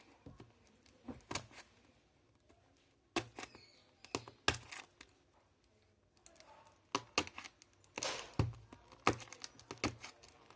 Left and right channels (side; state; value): both; identical; correlation 1.00